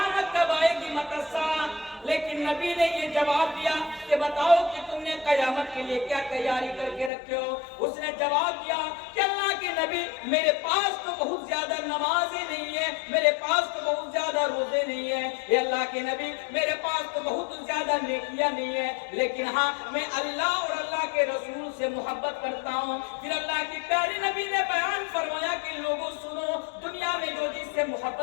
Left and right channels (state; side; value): drops out; right; at 7.1 s